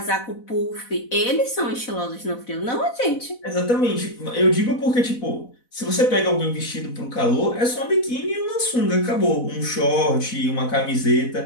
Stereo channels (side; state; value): right; late; 4.1 ms